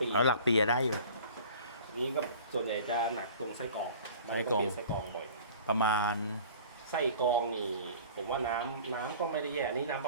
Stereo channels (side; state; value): both; inverted; correlation -0.44